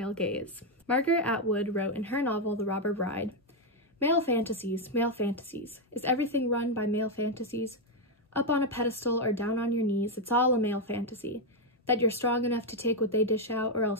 gaze? Margaret Atwood wrote in her novel The Robber Bride, male fantasies, is everything run by male fantasies? Up on a pedestal or down on your knees, it's all a male fantasy. That you're strong enough to take what they dish out or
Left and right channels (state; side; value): normal; both; correlation 0.02